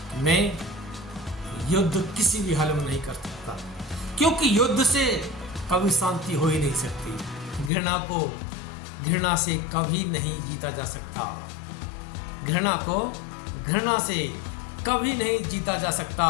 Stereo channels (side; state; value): right; drops out; at 7.7 s